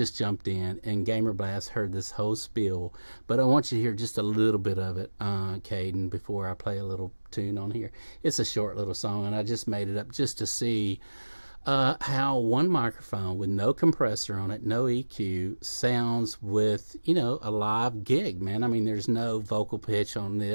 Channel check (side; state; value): both; inverted; correlation -1.00